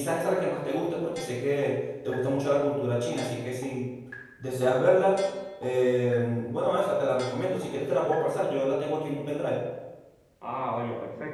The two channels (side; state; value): both; identical; correlation 1.00